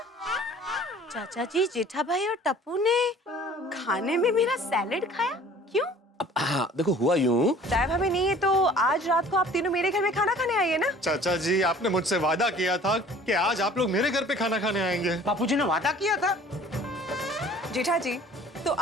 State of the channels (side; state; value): both; normal; correlation 0.49